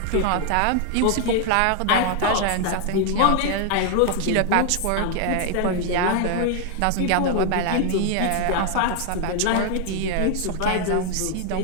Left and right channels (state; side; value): different; both; correlation 0.00